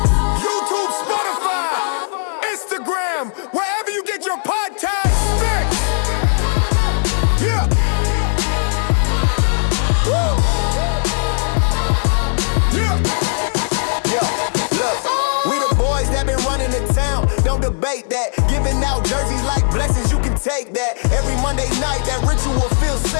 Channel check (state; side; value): silent; right; 68 dB below the other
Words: YouTube, Spotify, Instagram, wherever you get your podcast fix. Yeah. Woo. Yo, look, we the boys that been running the town. Don't debate that. Giving out jerseys like blessings, you can take that. Every Monday night, that ritual feels